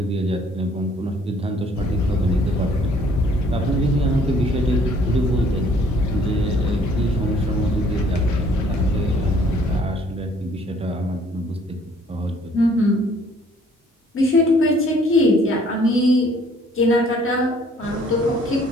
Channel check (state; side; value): normal; both; correlation 0.60